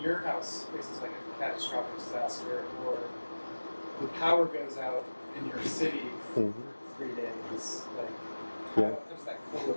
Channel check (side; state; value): both; inverted; correlation -1.00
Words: house faces like a catastrophic disaster, or the power goes out in your city for 3 days, like how does that